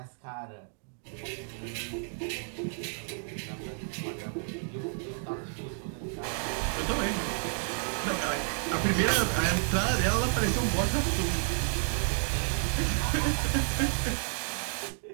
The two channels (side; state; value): left; silent; 56 dB below the other